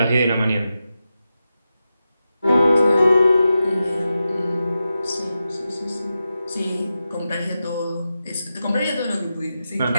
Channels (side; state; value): both; inverted; correlation -0.91